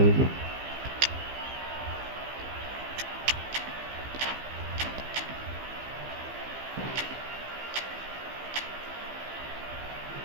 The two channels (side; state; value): left; late; 15 ms